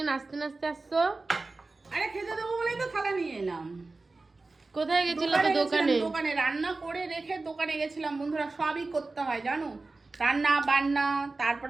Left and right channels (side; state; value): left; quieter; 3.5 dB